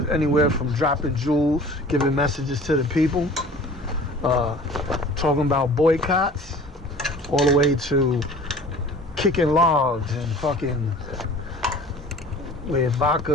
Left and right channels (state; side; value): normal; both; correlation 0.45